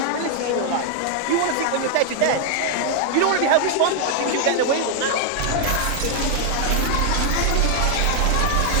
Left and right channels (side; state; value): both; different; correlation 0.00